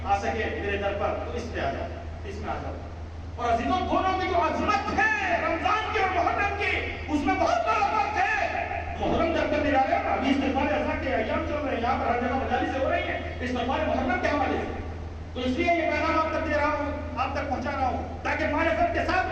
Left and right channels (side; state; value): both; identical; correlation 1.00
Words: آ سکے میرے در پر تو اس پہ آ جاؤ، اس میں آ جاؤ۔ اور عزیزوں دونوں کی جو عظمت ہے رمضان کی اور محرم کی، اس میں بہت بڑا فرق ہے۔ محرم جب تک نکالے نا، ابھی استغفار اذان کے ایام چل رہے ہیں، یہاں پر ہر جگہ مجالس ہو رہی ہیں استغفار محرم کے حوالے سے، تو اس لیے یہ پیغام آپ تک دے رہا ہوں، آپ تک پہنچا رہا ہوں تاکہ معرفت کے ساتھ